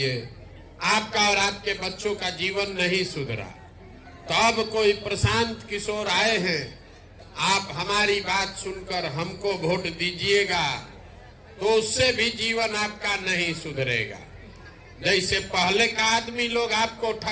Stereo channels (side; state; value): both; identical; correlation 1.00